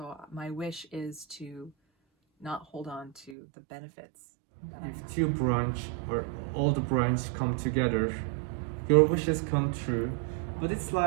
my wish is to not hold on to the benefits that I have. If 2 branch or all the branch come together, your wishes come true. But it's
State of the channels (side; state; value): left; drops out; at 3.4 s